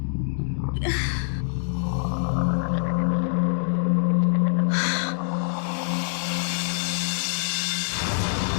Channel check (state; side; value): silent; right; digital silence